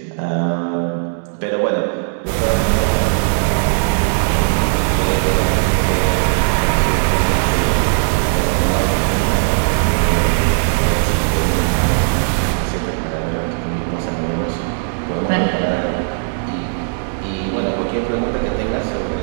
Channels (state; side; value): silent; left; 66 dB below the other